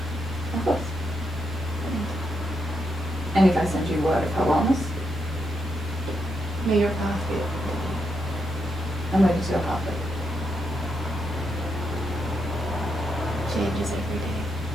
Of course. And if I send you word of her wellness, May your path be open. I'm ready to go pathway. Changes every day.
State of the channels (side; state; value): both; normal; correlation 0.82